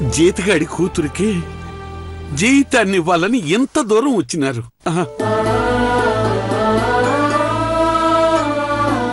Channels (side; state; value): both; identical; correlation 1.00